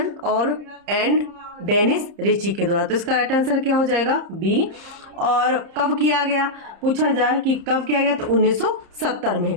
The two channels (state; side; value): late; left; 30 ms